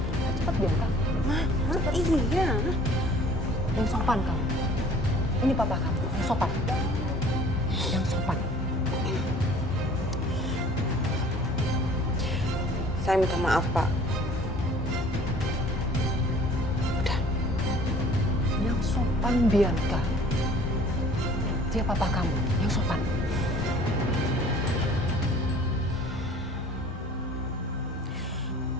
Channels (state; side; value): normal; both; correlation 0.51